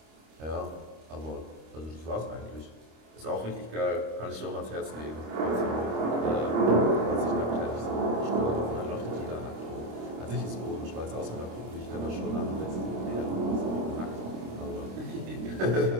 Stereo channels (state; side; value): late; left; 26 ms